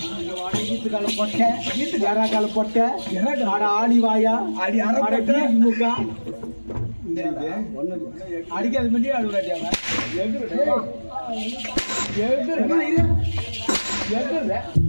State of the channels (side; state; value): both; inverted; correlation -1.00